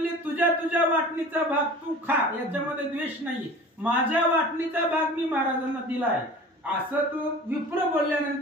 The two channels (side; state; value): both; normal; correlation 0.41